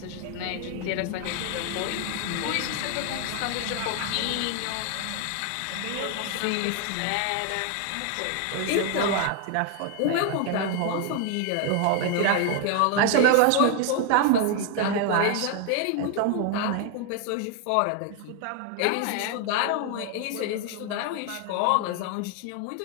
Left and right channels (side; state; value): both; different; correlation 0.00